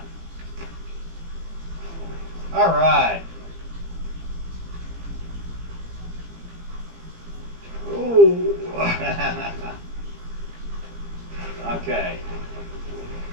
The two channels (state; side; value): late; left; 17 ms